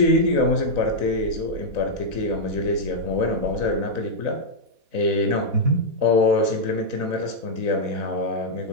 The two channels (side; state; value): left; late; 4.0 ms